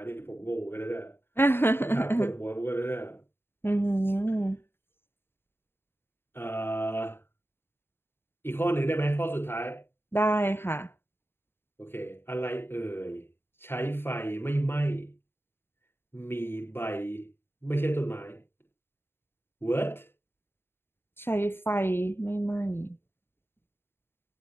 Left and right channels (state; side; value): late; right; 0.11 ms